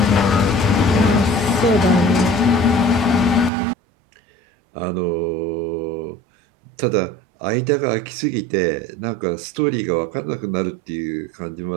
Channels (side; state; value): left; drops out; at 3.5 s